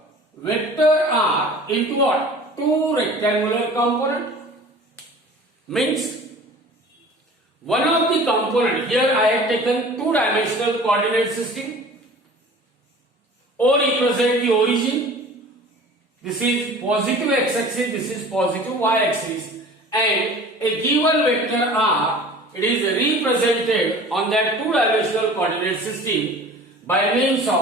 vector r into what? Two rectangular components. Means one of the component, here I have taken two-dimensional coordinate system. O represent the origin. This is positive x-axis, this is positive y-axis, and a given vector r, it is represented on that two-dimensional coordinate system by means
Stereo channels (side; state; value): both; normal; correlation 0.43